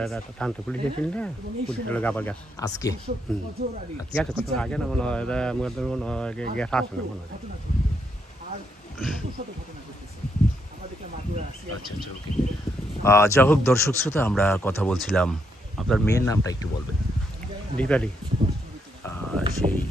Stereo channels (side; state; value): both; normal; correlation 0.77